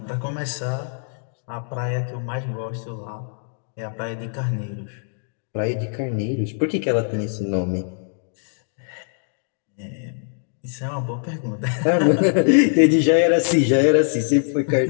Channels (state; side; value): silent; right; digital silence